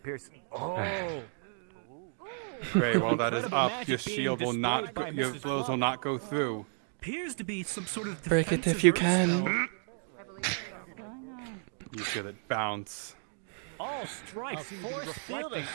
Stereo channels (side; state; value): left; silent; 56 dB below the other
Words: Oh. Frey, while that is Incredible up, magic your being shield will not, displayed by your Mrs. blows will not go through. Appears to be some sort of Break it if defensive you earth can. You feel it bounce. All strikes force fielding